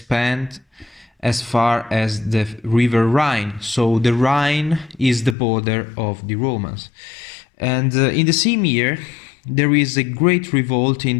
as far as the river Rhine. So the Rhine is the border of the Romans. And in the same year, there is a great revolt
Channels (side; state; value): right; drops out; at 5.4 s